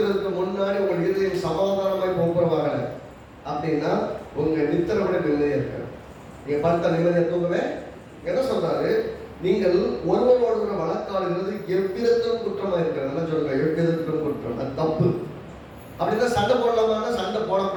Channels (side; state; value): both; identical; correlation 1.00